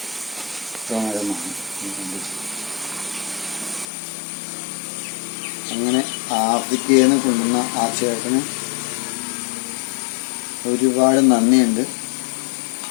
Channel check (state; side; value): drops out; right; at 3.9 s